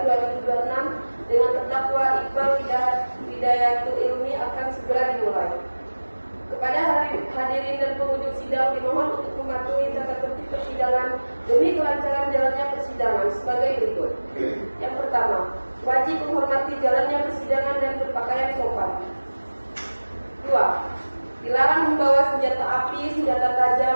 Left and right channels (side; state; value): both; inverted; correlation -1.00